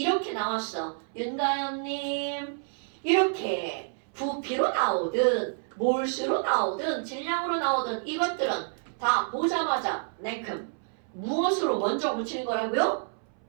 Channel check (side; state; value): left; silent; 59 dB below the other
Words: 나왔어. 윤가연님, 이렇게 부피로 나오든 몰수로 나오든 질량으로 나오든 이것들은 다 보자마자 냉큼 무엇으로 먼저 붙이는 거라고요?